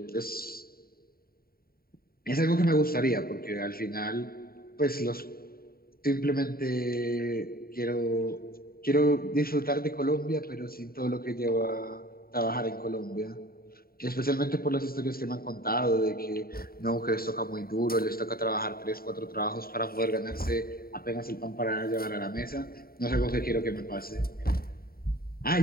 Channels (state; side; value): late; right; 0.43 ms